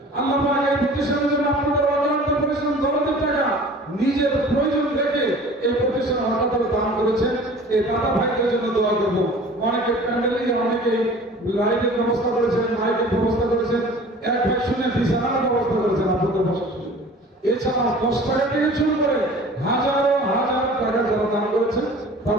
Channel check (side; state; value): both; normal; correlation 0.45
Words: আল্লাহ পাক এই প্রতিষ্ঠানের জন্য আপনাদের অক্লান্ত পরিশ্রম দরদের টাকা নিজের প্রয়োজন থেকে এই প্রতিষ্ঠান হঠাৎ দান করেছেন। এই দাদা ভাইদের জন্য দোয়া করব। অনেকে প্যান্ডেলে অনেকে লাইটের ব্যবস্থা করেছেন, মাইকের ব্যবস্থা করেছেন, এক ভাই শুনে বিছানার ব্যবস্থা করেছেন আপনাদের বসার জন্য। এছাড়া 10 টাকা থেকে শুরু করে হাজারো হাজার টাকা যারা দান করেছেন